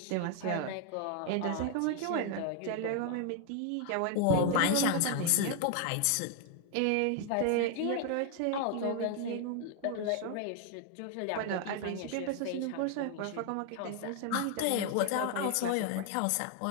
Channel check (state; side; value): different; both; correlation 0.00